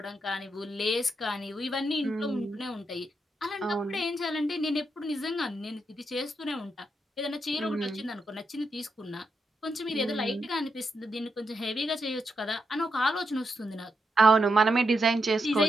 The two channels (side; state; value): both; normal; correlation 0.83